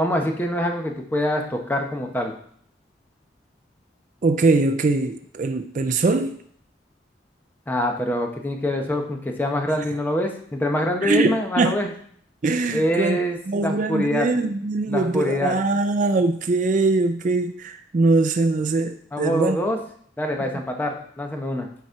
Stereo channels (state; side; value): normal; both; correlation 0.62